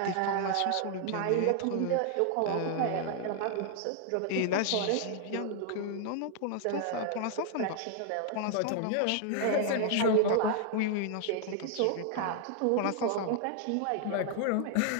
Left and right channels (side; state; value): both; different; correlation 0.00